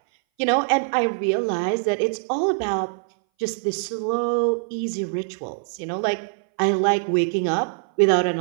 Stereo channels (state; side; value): silent; left; 60 dB below the other